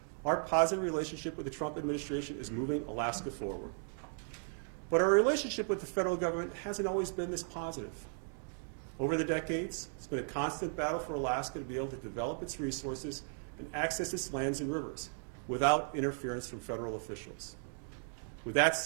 our positive relationship with the Trump administration is moving Alaska forward. But our relationship with the federal government hasn't always been this positive. Over the decades, it's been a constant battle for Alaska to be able to develop its resources and access its lands and rivers without interference from federal officials. With that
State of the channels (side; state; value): left; silent; 54 dB below the other